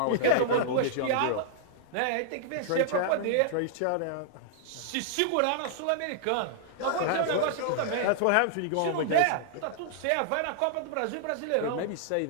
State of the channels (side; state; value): both; different; correlation -0.01